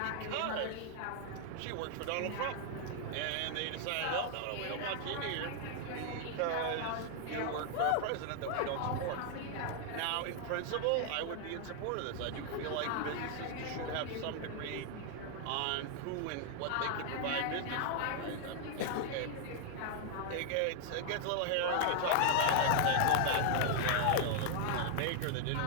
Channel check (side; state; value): both; different; correlation 0.00